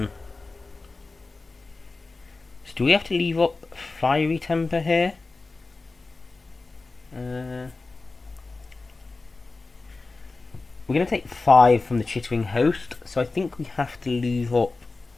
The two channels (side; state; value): right; quieter; 3.6 dB